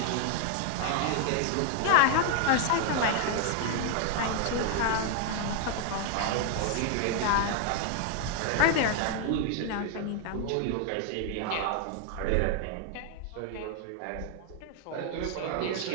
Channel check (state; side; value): different; both; correlation 0.00